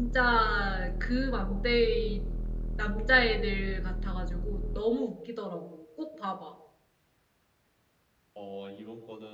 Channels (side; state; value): both; identical; correlation 1.00